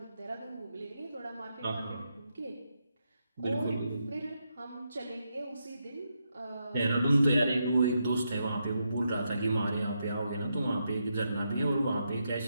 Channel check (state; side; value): inverted; both; correlation -0.83